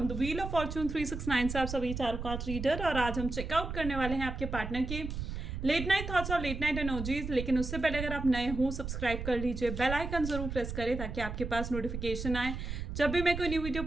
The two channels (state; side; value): noise; right; rumble, 6 dB below the sound